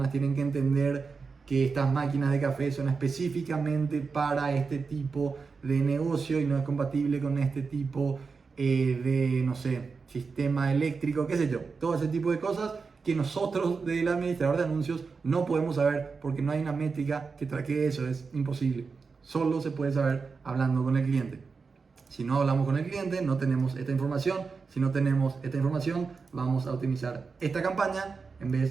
tienen que entender que estas máquinas de café son específicamente para este tipo de negocio y no es compatible con este tipo de, no sé, sistema eléctrico, qué sé yo. Todo ese tipo de cosas que nosotros del administrador de anuncios no podemos saber, porque no hay una métrica que traque eso, es imposible. Solo se puede saber hablando con el cliente. Si no hablamos con el cliente, no tenemos esta información. Si no tenemos esta información, vamos a optimizar esta campaña en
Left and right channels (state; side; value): quieter; left; 4.9 dB